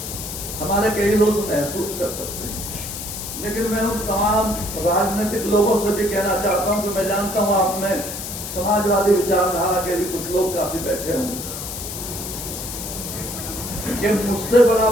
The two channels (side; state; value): left; noise; hiss, 7 dB below the sound